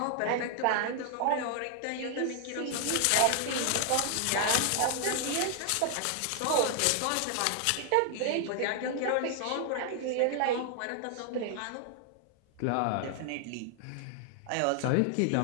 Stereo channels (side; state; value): both; different; correlation 0.00